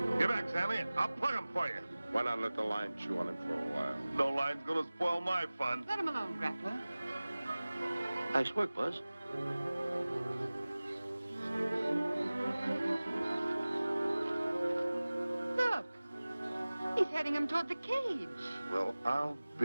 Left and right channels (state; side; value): inverted; both; correlation -0.99